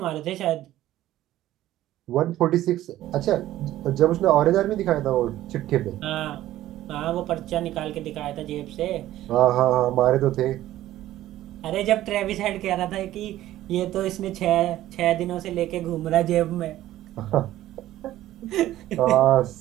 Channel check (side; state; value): left; quieter; 14.2 dB